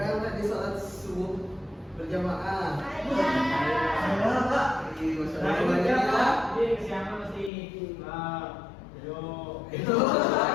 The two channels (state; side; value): drops out; right; at 7.5 s